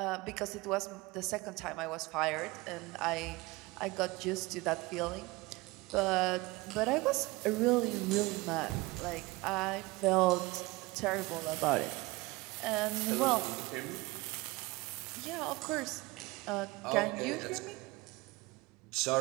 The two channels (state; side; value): quieter; left; 22.4 dB